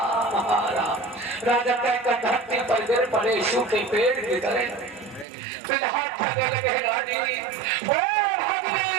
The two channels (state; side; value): drops out; left; at 5.2 s